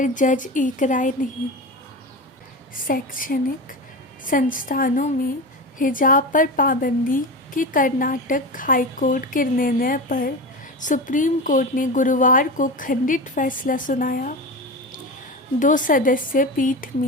जज एक राय नहीं। शैक्षणिक संस्थानों में हिजाब पर पाबंदी के कर्नाटक हाईकोर्ट के निर्णय पर सुप्रीम कोर्ट ने गुरुवार को खंडित फैसला सुनाया। 2 सदस्यीय पीठ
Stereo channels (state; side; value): normal; both; correlation 0.25